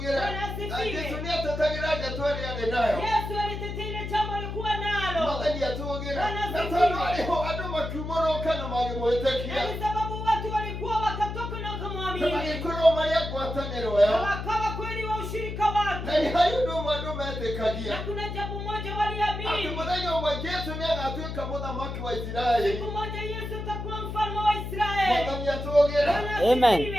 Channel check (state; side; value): noise; left; hum, 6 dB below the sound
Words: Yesu ni atetagira atwali ade nayo. Yesu alitetea ile jambo alikuwa nalo. Mwathani atugire. Na tano aliho adu makimoroka na magimwetekia. Ni sababu watu walikuwa wakatoka na kumwamini. Na ikoro Maria gwataniro yao. Wakawa kweli wa ushirika wake. Na ni hayo ndo mwandume atekagia. Na kuna jambo moja waliamini. Atumudanya wa Yesu ni anatuika muthamaki wa Israeli. Siku moja Yesu atakuwa mfalme wa Israeli. Mwathani atugire. Amen.